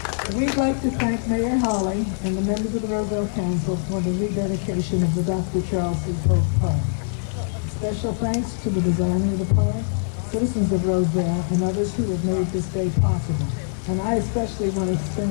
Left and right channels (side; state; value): right; silent; digital silence